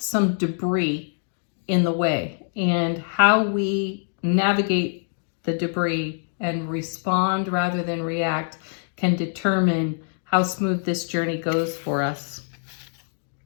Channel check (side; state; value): right; silent; digital silence